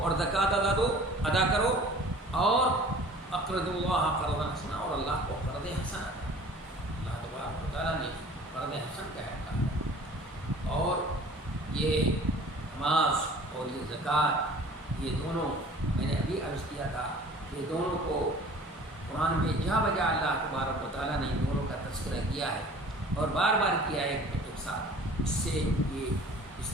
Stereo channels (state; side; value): normal; both; correlation 0.47